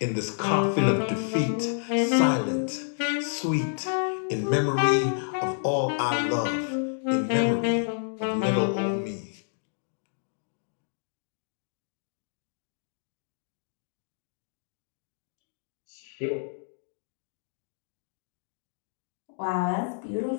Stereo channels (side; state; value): right; silent; digital silence